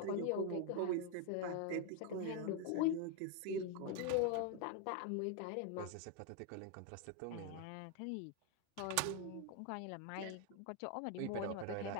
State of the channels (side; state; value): both; different; correlation 0.01